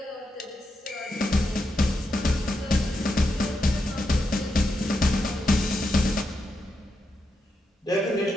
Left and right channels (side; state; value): both; normal; correlation 0.85